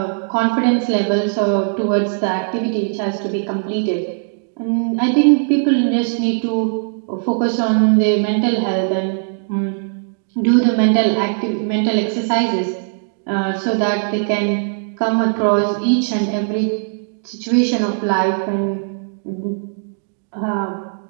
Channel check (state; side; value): silent; left; digital silence